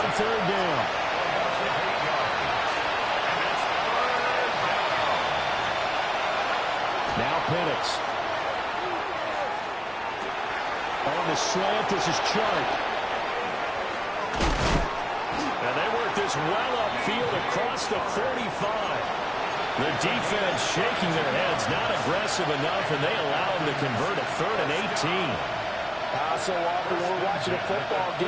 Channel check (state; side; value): identical; both; correlation 1.00